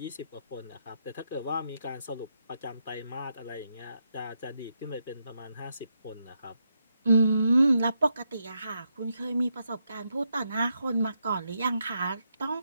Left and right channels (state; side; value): inverted; both; correlation -0.82